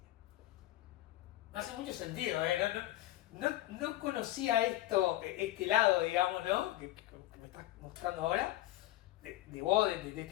Me hace mucho sentido, ¿eh? No conocía este lado, digamos, ¿no? Que me estás mostrando ahora, de vos, de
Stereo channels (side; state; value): right; quieter; 15.3 dB